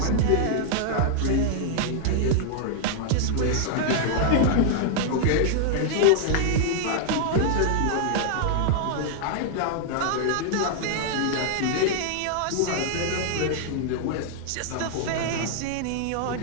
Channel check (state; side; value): different; both; correlation -0.01